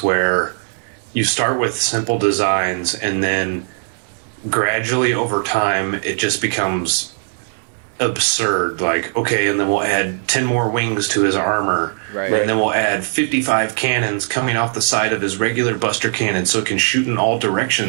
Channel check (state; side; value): silent; left; 67 dB below the other